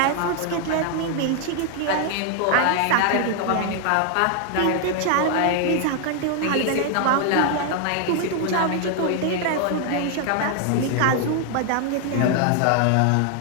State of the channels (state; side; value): different; both; correlation 0.00